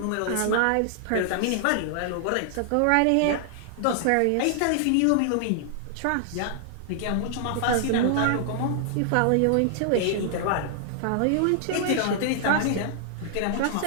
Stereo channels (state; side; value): different; both; correlation -0.01